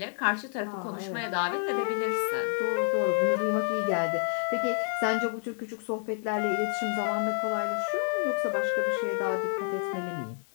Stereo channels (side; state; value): right; silent; 55 dB below the other